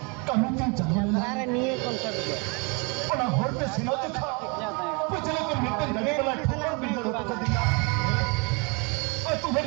कानून की जानवर अरे नहीं कौन सा दो और ना होर पे सिनो तो खा पिछले को मिलते लगे वाला ठोकर बिल्डर होता कर दिया और तुम्हें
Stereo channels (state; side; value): quieter; left; 32.0 dB